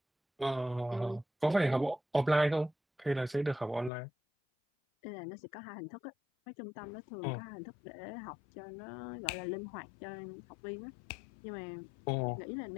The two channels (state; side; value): drops out; right; at 3.9 s